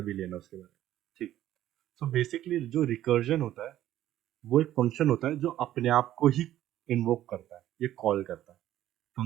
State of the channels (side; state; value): left; quieter; 13.0 dB